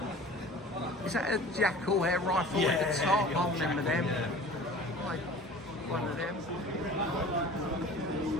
Is that a Jackal air rifle at the top? I remember them. Like one of them.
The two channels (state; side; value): normal; both; correlation 0.42